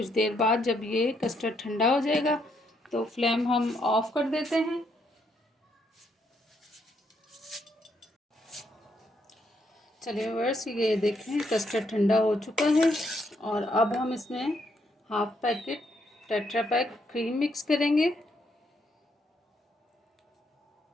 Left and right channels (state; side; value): normal; both; correlation 0.75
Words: देर बाद, जब ये कस्टर्ड ठंडा हो जाएगा। तो फ्लेम हम ऑफ कर देते हैं। चलिए व्यूअर्स, ये देखें कस्टर्ड ठंडा हो चुका है। और अब हम इसमें 1/2 packet tetra pack cream mix करेंगे।